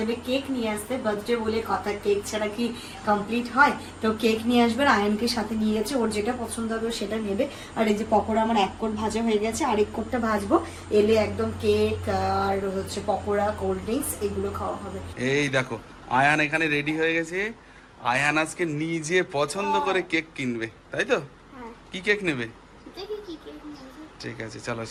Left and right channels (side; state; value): both; identical; correlation 1.00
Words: কেক নিয়ে আসতে। বার্থডে বলে কথা, কেক ছাড়া কি কমপ্লিট হয়? তো কেক নিয়ে আসবে, আয়নকে সাথে নিয়ে গেছে, ওর যেটা পছন্দ হবে সেটা নেবে। আর এই যে পকোড়া আমার 1 কোট ভাজা হয়ে গেছে, আরেক কোটটা ভাজবো, এলে একদম কেক আর হচ্ছে পকোড়া, কোল্ড ড্রিঙ্কস এগুলো খাওয়া হবে। এই দেখো আয়ান এখানে রেডি হয়ে গেছে। আয়ান আজকে নিজে পছন্দ করে কেক কিনবে, তাই তো? কি কেক নেবে? দেখি কি কেক নিয়েছে। ঠিক আছে, চলো।